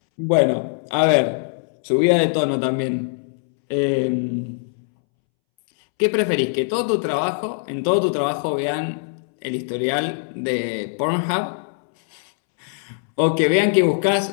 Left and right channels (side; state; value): right; silent; 65 dB below the other